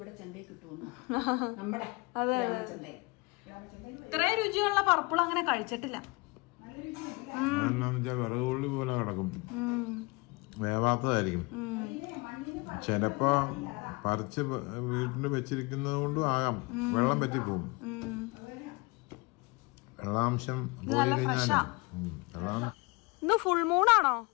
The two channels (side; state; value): right; quieter; 26.8 dB